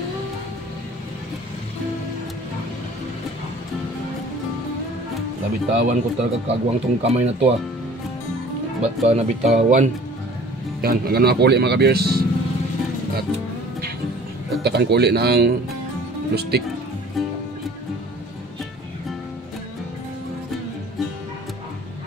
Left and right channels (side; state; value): both; normal; correlation 0.49